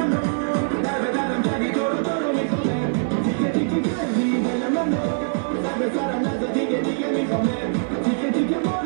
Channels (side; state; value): left; silent; digital silence